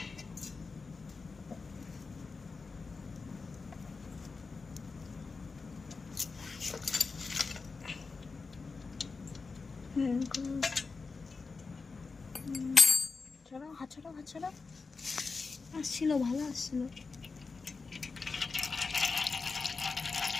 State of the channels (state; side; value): quieter; right; 4.4 dB